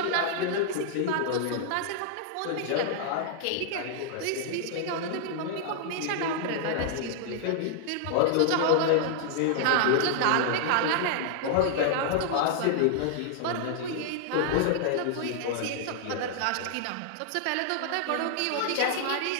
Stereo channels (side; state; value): both; different; correlation -0.01